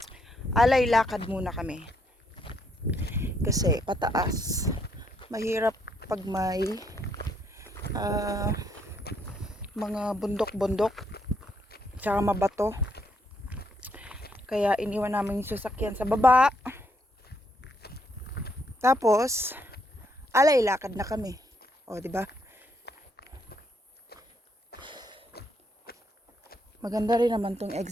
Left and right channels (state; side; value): normal; both; correlation 0.73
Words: Alay lakad muna kami. Kasi pataas. Mahirap pag may mga bundok-bundok tsaka mabato. Kaya iniwan namin yung sasakyan sa baba. Tapos, alay lakad na kami. O, di ba? Maganda rin naman tong